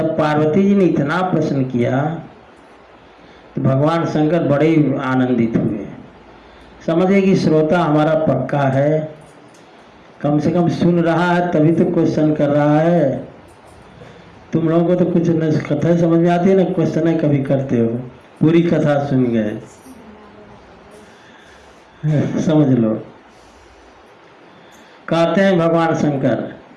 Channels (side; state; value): both; identical; correlation 1.00